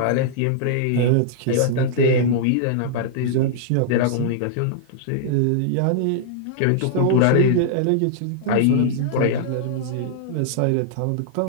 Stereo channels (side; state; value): both; different; correlation -0.01